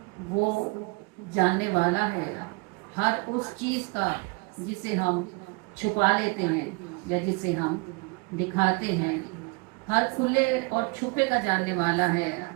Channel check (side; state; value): left; quieter; 29.4 dB